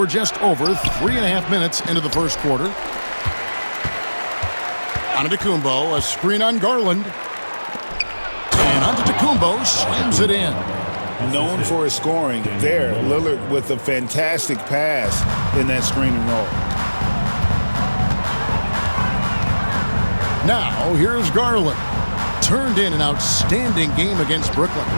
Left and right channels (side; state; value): both; inverted; correlation -1.00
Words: just over 3.5 minutes into the first quarter. Antetokounmpo, a screen on Garland. And Antetokounmpo slams it in. Known for his scoring, there, Lillard with a fantastic pass in that screen and roll. Now, here's Garland. Turned in an outstanding game against Brooklyn.